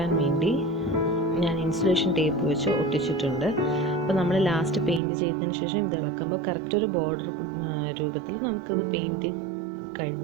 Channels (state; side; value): drops out; left; at 5.0 s